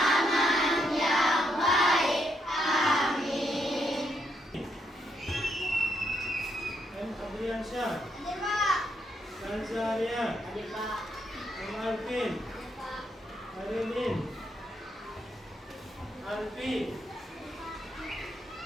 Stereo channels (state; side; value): normal; both; correlation 0.77